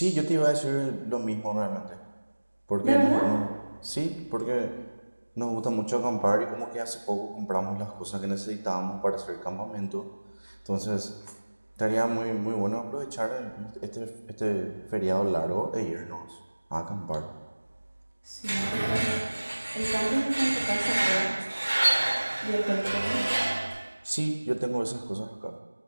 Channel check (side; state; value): both; inverted; correlation -1.00